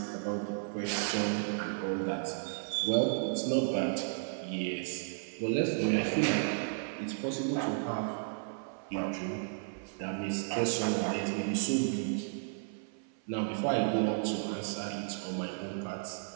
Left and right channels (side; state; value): left; silent; 55 dB below the other